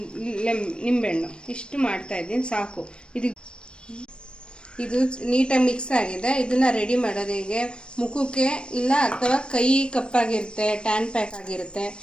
ನಿಂಬೆಹಣ್ಣು ಇಷ್ಟು ಮಾಡ್ತಾಯಿದ್ದೀನಿ, ಸಾಕು. ಇದು ನೀಟಾಗಿ ಮಿಕ್ಸ್ ಆಗಿದೆ. ಇದನ್ನು ರೆಡಿ ಮಾಡೋದು ಹೀಗೆ. ಮುಖಕ್ಕೆ ಇಲ್ಲ ಅಥವಾ ಕೈ ಕಪ್ಪಾಗಿರುತ್ತೆ, ಟ್ಯಾನ್ ಪ್ಯಾಕ್ ಆಗಿರುತ್ತೆ,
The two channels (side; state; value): right; late; 0.054 ms